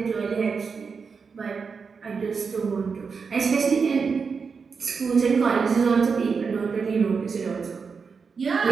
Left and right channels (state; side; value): quieter; left; 5.4 dB